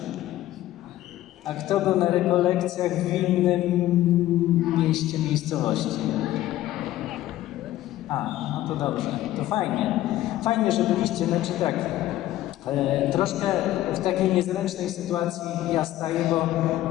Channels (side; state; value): right; quieter; 14.5 dB